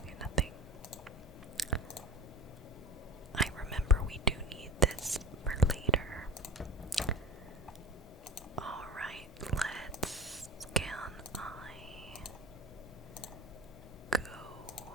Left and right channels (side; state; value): both; normal; correlation 0.32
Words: nothing. I remember we do need this for later. Alright, let's can I go